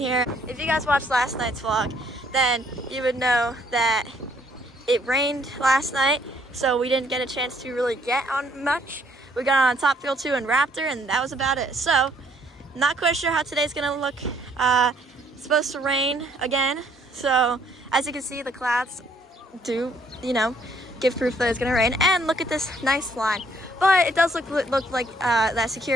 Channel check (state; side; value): normal; both; correlation 0.65